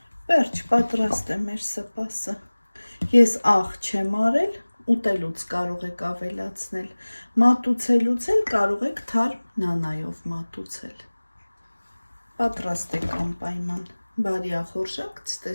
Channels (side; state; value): both; inverted; correlation -1.00